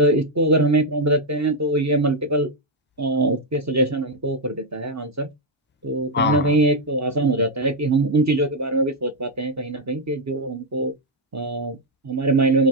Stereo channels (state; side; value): normal; both; correlation 0.00